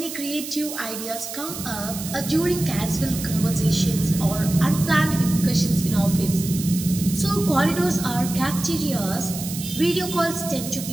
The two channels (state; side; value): noise; right; hiss, 9 dB below the sound